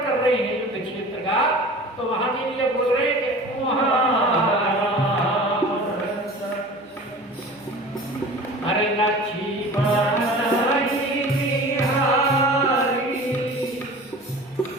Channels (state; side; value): normal; both; correlation 0.39